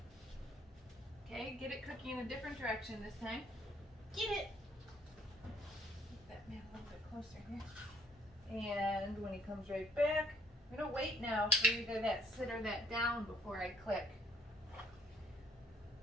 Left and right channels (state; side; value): normal; both; correlation 0.63